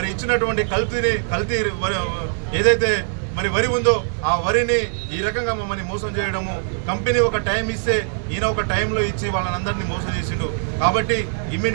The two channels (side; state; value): left; silent; digital silence